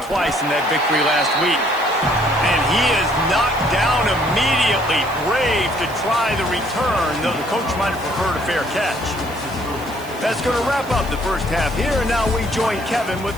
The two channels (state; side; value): noise; right; hiss, 19 dB below the sound